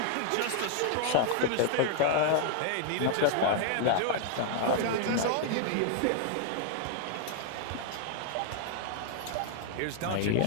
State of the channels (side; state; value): both; different; correlation 0.00